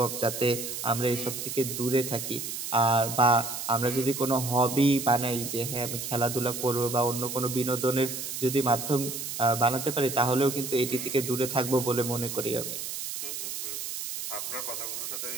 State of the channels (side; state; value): right; noise; hiss, 6 dB below the sound